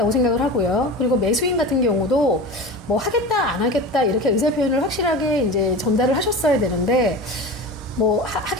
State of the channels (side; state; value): both; normal; correlation 0.31